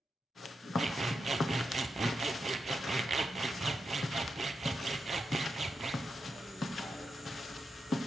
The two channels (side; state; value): both; normal; correlation 0.87